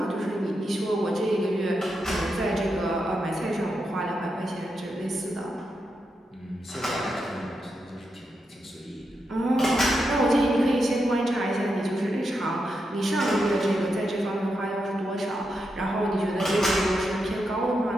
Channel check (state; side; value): normal; both; correlation 0.85